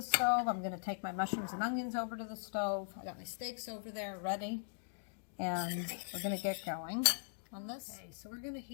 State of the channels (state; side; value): silent; right; digital silence